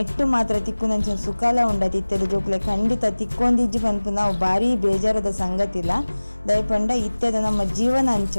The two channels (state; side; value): inverted; both; correlation -1.00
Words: ಮಾತ್ರ ತಿಕ್ಕುನಂಚಿನ ಸುಖಲ ಉಂಡ ತಿತ್ತದ ಜೋಕ್ಲೆ ಖಂಡಿತ ತಿಕ್ಕೊಂದಿಜ್ಜಿ ಪನ್ಪು ನಾವು ಭಾರಿ ಬೇಜಾರದ ಸಂಗತಿಲ್ಲ ದಯಪಂಡ ಇತ್ತದ ನಮ್ಮ ಜೀವನ ಅಂಚ